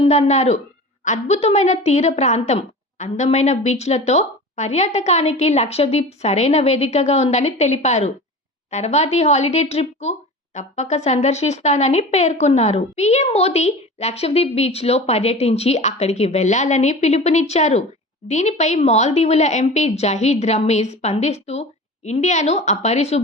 అద్భుతమైన తీర ప్రాంతం, అందమైన బీచ్లతో పర్యాటకానికి లక్షద్వీప్ సరైన వేదికగా ఉందని తెలిపారు. తర్వాతి హాలిడే ట్రిప్కు తప్పక సందర్శిస్తానని పేర్కొన్నారు. పీఎం మోదీ లక్షద్వీప్ బీచ్లో పర్యటించి అక్కడికి వెళ్లాలని పిలుపునిచ్చారు. దీనిపై మాల్దీవుల ఎంపీ జహీద్ రమీజ్ స్పందిస్తూ ఇండియాను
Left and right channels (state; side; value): normal; both; correlation 0.35